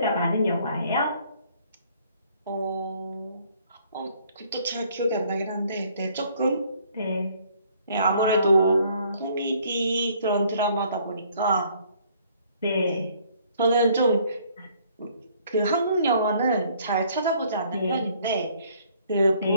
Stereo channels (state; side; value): inverted; both; correlation -0.62